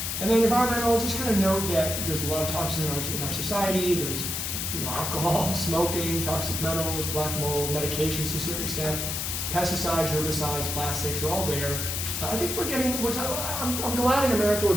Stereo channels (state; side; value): noise; left; hiss, 2 dB below the sound